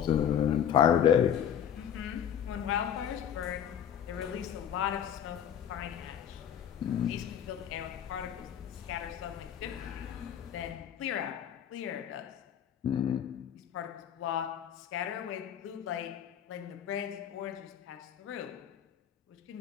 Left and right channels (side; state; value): right; quieter; 9.2 dB